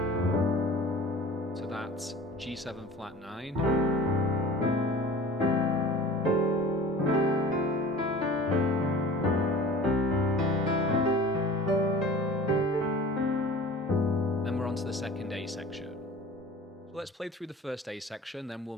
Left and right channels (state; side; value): normal; both; correlation 0.41